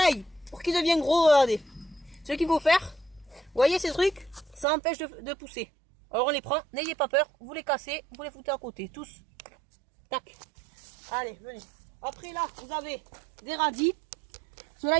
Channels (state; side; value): drops out; left; at 4.7 s